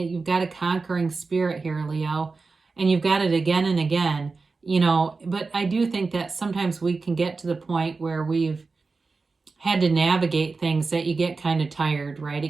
got a conquering spirit here, Leo, and you've got it again and again. But I do think that sometimes we can get to the point where we've had to navigate things that you get kind of tired, right?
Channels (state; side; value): quieter; left; 4.1 dB